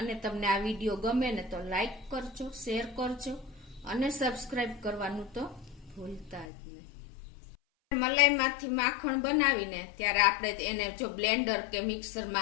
તમને આ વિડીયો ગમે ને તો લાઈક કરજો, શેર કરજો અને સબસ્ક્રાઇબ કરવાનું તો ભૂલતા જ નહીં। મલાઈમાંથી માખણ બનાવીને ત્યારે આપણે એને જો બ્લેન્ડર કે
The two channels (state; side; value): drops out; right; at 6.5 s